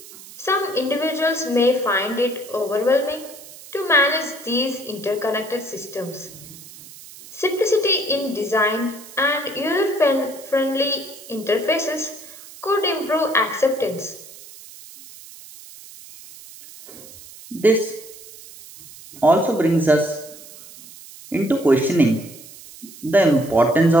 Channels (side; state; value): right; noise; hiss, 18 dB below the sound